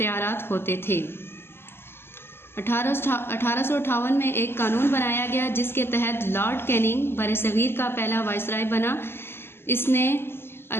होते थे। 1858 में एक कानून बनाया गया जिसके तहत लॉर्ड कैनिंग बरसग़ीर का पहला वायसराय बना। इसने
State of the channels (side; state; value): right; late; 0.11 ms